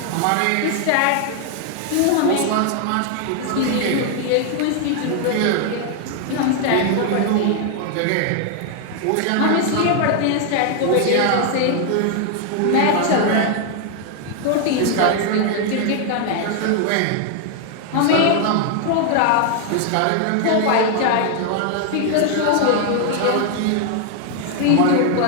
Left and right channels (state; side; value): different; both; correlation 0.00